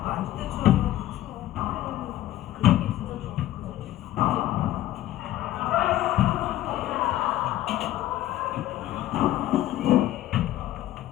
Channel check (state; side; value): quieter; right; 14.1 dB